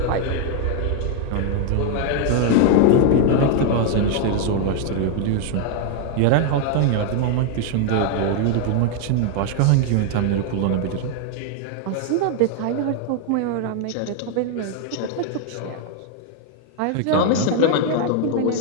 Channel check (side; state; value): both; different; correlation 0.00